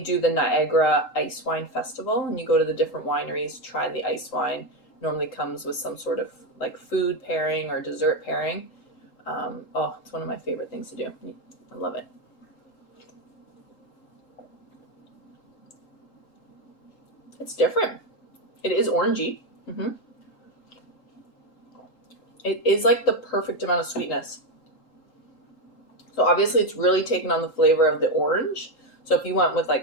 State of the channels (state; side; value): late; right; 3.8 ms